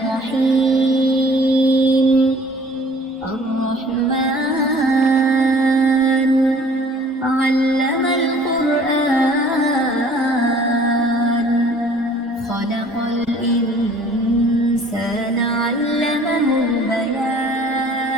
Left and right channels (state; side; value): normal; both; correlation 0.53